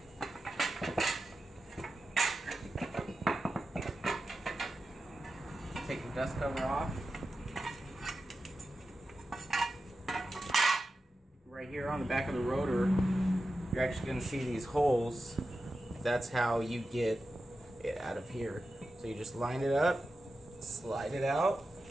Take the dust cover off. Right here on the back of the rotor, you're actually going to see these holes. That's how you get it out of here. So you just line it up, slide it out.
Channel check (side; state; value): both; normal; correlation 0.92